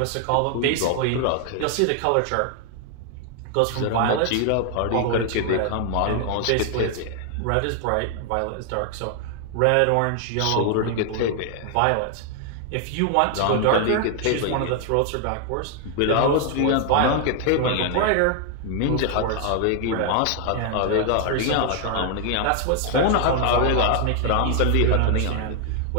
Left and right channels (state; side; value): different; both; correlation 0.00